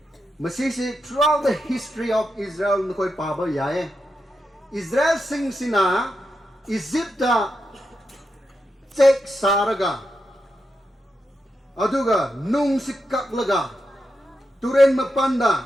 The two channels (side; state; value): both; normal; correlation 0.86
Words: Masisi throughout the history of Israel nakoi paba yae Israel sing sina Egypta check saraga aduga nung sikaklaga turen